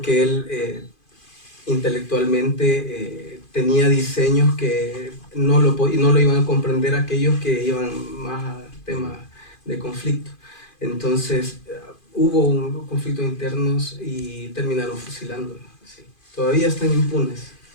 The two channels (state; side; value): late; right; 2.5 ms